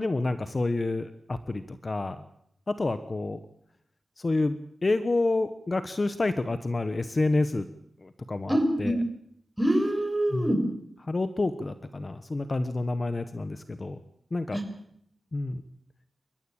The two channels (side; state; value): both; normal; correlation 0.97